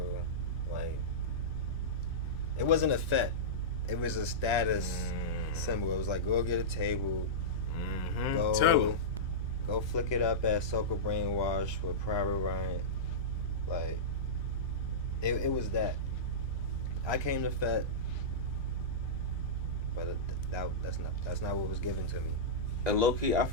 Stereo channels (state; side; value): normal; both; correlation -0.15